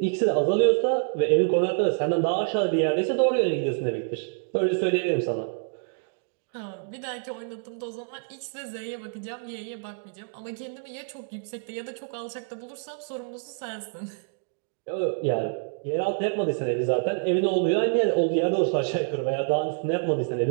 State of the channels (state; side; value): silent; left; 60 dB below the other